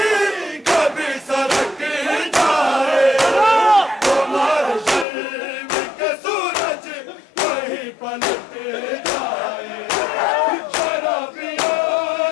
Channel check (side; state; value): right; drops out; at 5.1 s